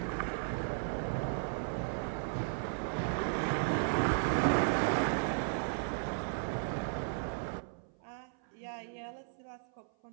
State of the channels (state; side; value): silent; left; 54 dB below the other